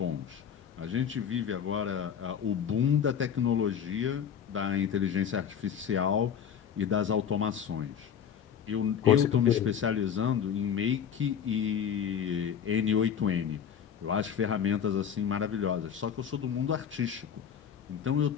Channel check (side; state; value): right; quieter; 8.2 dB